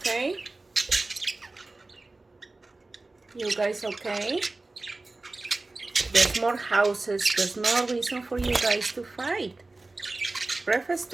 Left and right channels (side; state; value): left; quieter; 3.2 dB